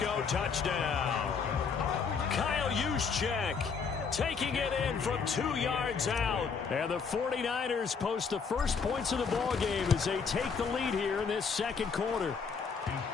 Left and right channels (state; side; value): quieter; right; 5.7 dB